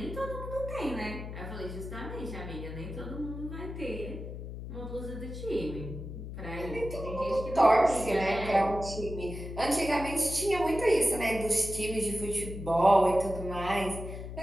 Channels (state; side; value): noise; left; hum, 9 dB below the sound